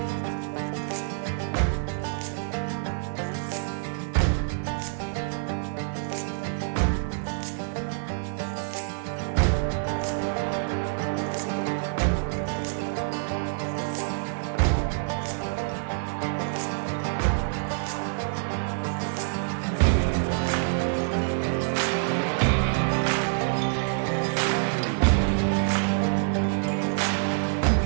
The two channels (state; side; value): silent; left; digital silence